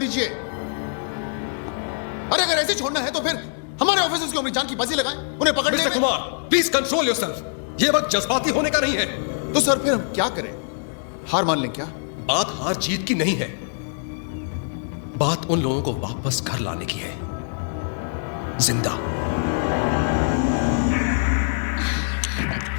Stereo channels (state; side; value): silent; right; digital silence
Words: अरे अगर ऐसे छोड़ना है तो फिर हमारे ऑफिसर्स की अपनी जान की बाजी लगाएं, उन्हें पकड़ने मिस्टर में। Kumar, please control yourself. ये वक्त जज्बाती होने का नहीं है। तो सर फिर हम क्या करें? हार मान लें क्या? बात हार जीत की नहीं है, बात उन लोगों को वापस घर लाने की है, जिंदा।